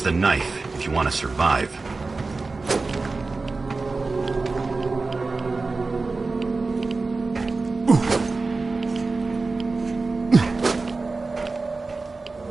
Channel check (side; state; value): left; quieter; 3.8 dB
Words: the knife if you want to survive.